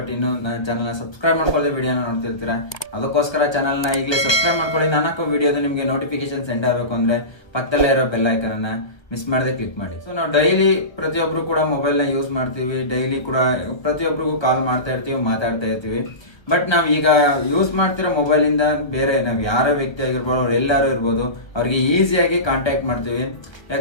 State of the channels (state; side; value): late; right; 1.2 ms